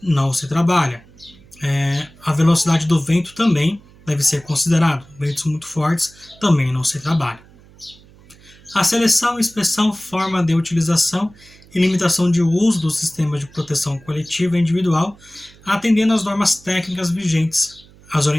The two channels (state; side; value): noise; right; hum, 25 dB below the sound